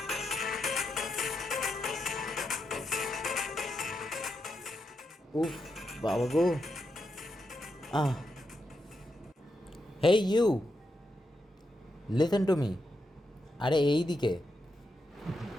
উফ বাবা গো। Ah hey you, listen to me. আরে এই দিকে।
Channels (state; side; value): normal; both; correlation 0.85